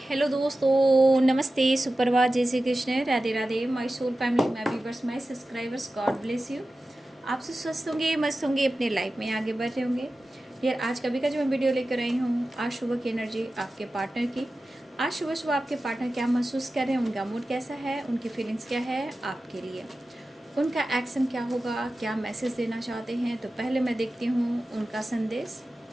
हेलो दोस्तों, नमस्ते, सुप्रभात, जय Shri Krishna, Radhe Radhe. My soul family, my viewers, my subscribers, God bless you. आप सब स्वस्थ होंगे, मस्त होंगे, अपने लाइफ में आगे बढ़ रहे होंगे। यार आज कभी का जो मैं वीडियो लेकर आई हूँ, आज सुबह की एनर्जी आपके पार्टनर की। आज सुबह सुबह आपके पार्टनर क्या महसूस कर रहे हैं, उनका मूड कैसा है, उनकी फीलिंग्स क्या है आपके लिए, उनका एक्शन क्या होगा, क्या मैसेज देना चाहते हैं। तो पहले मैं देखती हूँ उनका संदेश।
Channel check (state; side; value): normal; both; correlation 0.94